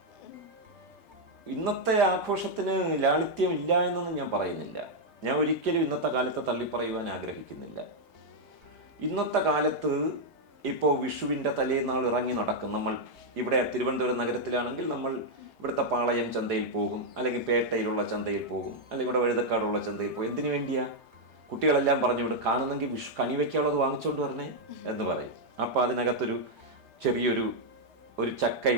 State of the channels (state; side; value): late; left; 3.2 ms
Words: ഇന്നത്തെ ആഘോഷത്തിന് ലാളിത്യം ഇല്ല എന്നൊന്നും ഞാൻ പറയുന്നില്ല. ഞാൻ ഒരിക്കലും ഇന്നത്തെ കാലത്തെ തള്ളിപ്പറയുവാൻ ആഗ്രഹിക്കുന്നില്ല. ഇന്നത്തെ കാലത്ത് ഇപ്പോൾ വിഷുവിൻ്റെ തലേന്നാൾ ഇറങ്ങി നടക്കും. നമ്മൾ ഇവിടെ തിരുവനന്തപുരം നഗരത്തിലാണെങ്കിൽ നമ്മൾ ഇവിടുത്തെ പാളയം ചന്തയിൽ പോകും, അല്ലെങ്കിൽ പേട്ടയിലുള്ള ചന്തയിൽ പോകും, അല്ലെങ്കിൽ ഇവിടെ വഴുതക്കാടുള്ള ചന്തയിൽ പോകും. എന്തിനു വേണ്ടിയാ? കുട്ടികളെല്ലാം പറഞ്ഞു വിടും, കാണുന്നെങ്കിൽ വിഷു കണി വയ്ക്കാനുള്ളത് വാങ്ങിച്ചുകൊണ്ട് വരണേ എന്ന് പറയും. അപ്പോൾ അതിനകത്തൊരു ചെറിയൊരു